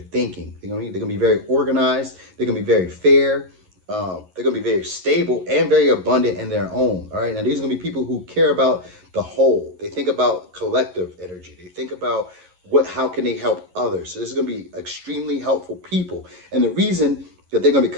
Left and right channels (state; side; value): late; left; 11 ms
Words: They're gonna be very organized. They're gonna be very fair. They're gonna be very stable and very abundant in their own. All right. Now these are gonna be people who care about the whole. They think about collective energy. They think about how can they help others. So this is gonna be extremely helpful people. And the reason that they're gonna be